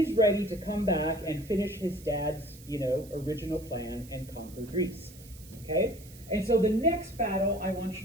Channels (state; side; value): noise; right; hiss, 21 dB below the sound